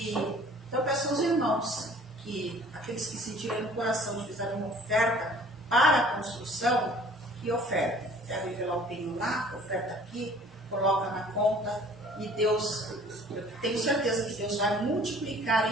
então eu peço aos irmãos que aqueles que sentiram no coração, fizeram uma oferta para a construção, que oferta. Quer envelopinho lá, oferta aqui, coloca na conta e Deus, eu tenho certeza que Deus vai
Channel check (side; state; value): right; noise; hum, 28 dB below the sound